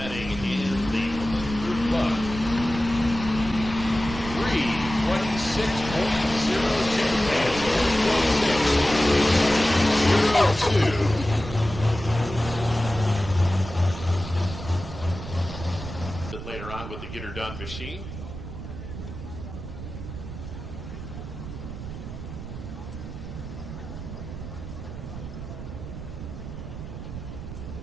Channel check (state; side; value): noise; right; rumble, 9 dB below the sound